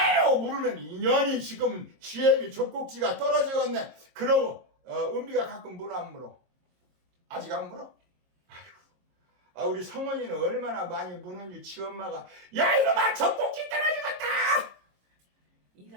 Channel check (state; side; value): late; left; 22 ms